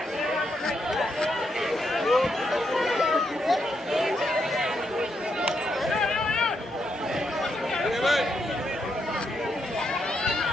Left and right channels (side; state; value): both; normal; correlation 0.79